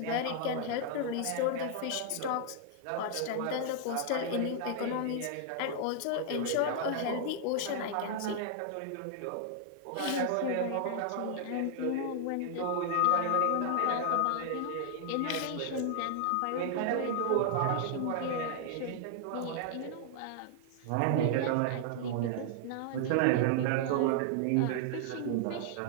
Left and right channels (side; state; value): both; different; correlation -0.01